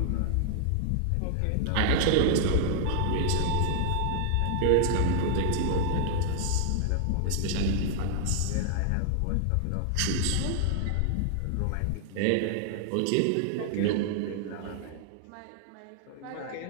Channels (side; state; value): both; different; correlation 0.00